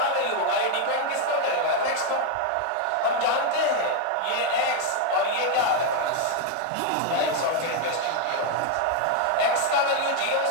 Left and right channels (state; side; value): different; both; correlation 0.01